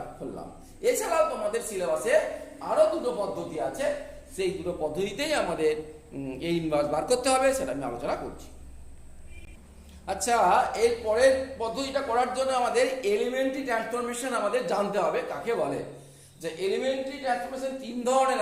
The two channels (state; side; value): identical; both; correlation 1.00